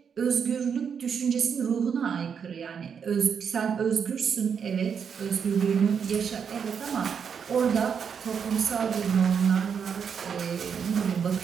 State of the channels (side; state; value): left; quieter; 6.9 dB